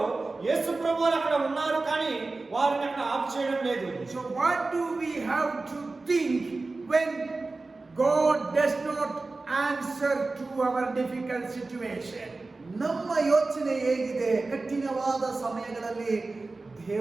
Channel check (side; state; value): left; quieter; 3.5 dB